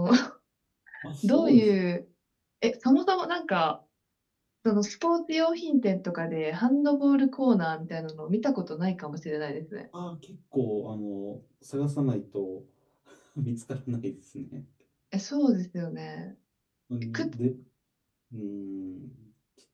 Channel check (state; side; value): identical; both; correlation 1.00